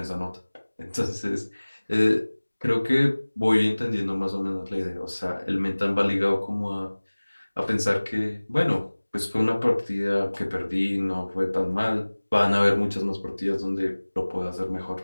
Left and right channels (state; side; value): inverted; both; correlation -1.00